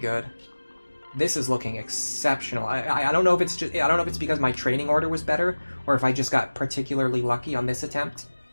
This is looking exceptional. I don't know if it's just I don't know if it's because my training order was better or if I just got particularly lucky on this attempt,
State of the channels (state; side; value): inverted; both; correlation -1.00